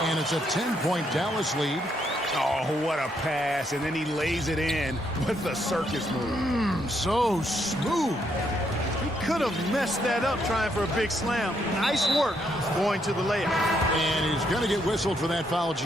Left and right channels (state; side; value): normal; both; correlation 0.75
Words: And it's a 10-point Dallas lead. Oh, what a pass. And then he lays it in with the circus move. So smooth. He could have messed that up trying for a big slam. Nice work going to the layup. And he's going to get whistled for that foul,